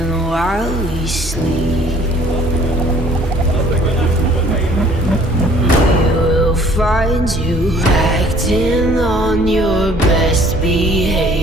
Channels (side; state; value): both; normal; correlation 0.56